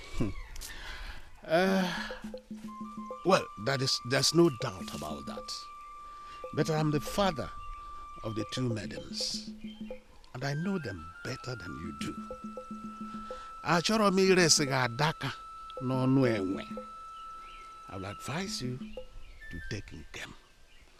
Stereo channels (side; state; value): both; identical; correlation 1.00